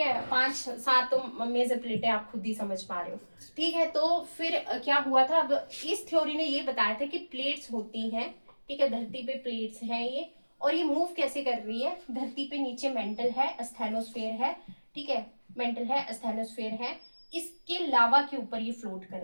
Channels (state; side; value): inverted; both; correlation -1.00